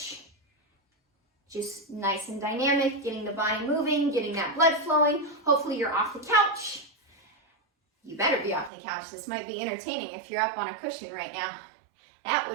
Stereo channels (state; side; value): drops out; left; at 8.7 s